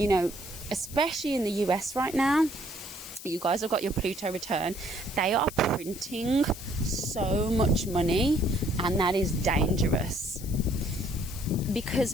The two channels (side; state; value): left; noise; hiss, 14 dB below the sound